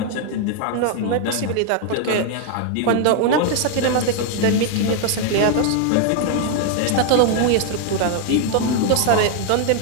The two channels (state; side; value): different; both; correlation 0.00